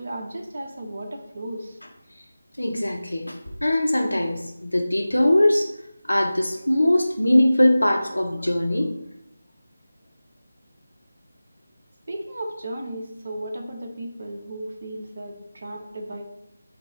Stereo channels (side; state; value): both; inverted; correlation -0.97